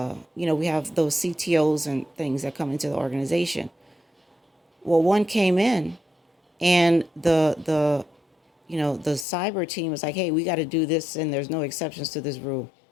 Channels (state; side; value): drops out; right; at 9.2 s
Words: have those CTOs and things that come into the organization. Well, one came in and the cyber team was like, hey, we got to do this and there's no exceptions to this rule.